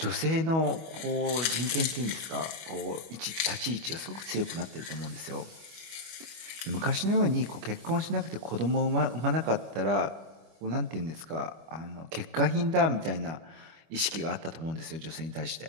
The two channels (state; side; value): late; left; 25 ms